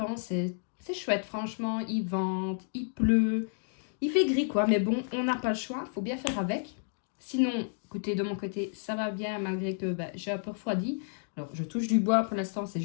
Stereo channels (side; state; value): right; silent; digital silence